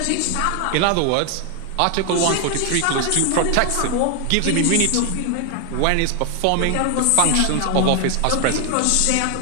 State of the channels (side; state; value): both; different; correlation 0.00